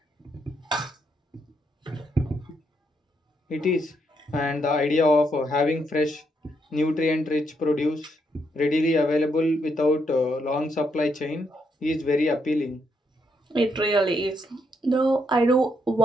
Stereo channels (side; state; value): both; normal; correlation 0.77